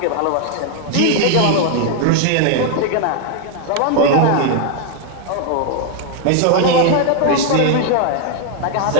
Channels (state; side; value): different; both; correlation 0.00